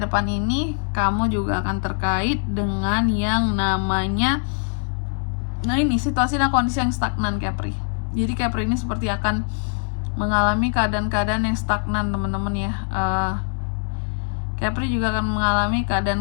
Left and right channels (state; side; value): silent; right; digital silence